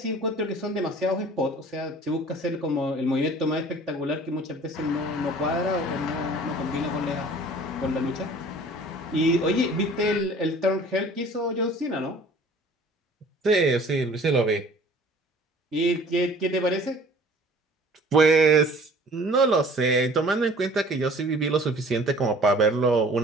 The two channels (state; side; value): normal; both; correlation 0.49